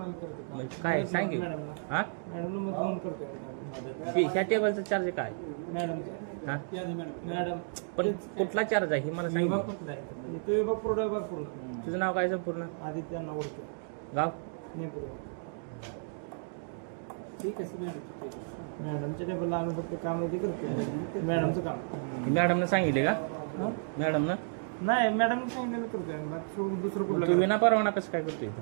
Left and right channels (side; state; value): left; silent; digital silence